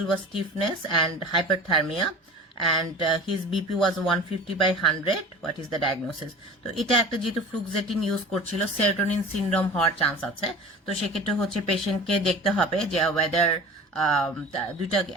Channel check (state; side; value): normal; both; correlation 0.38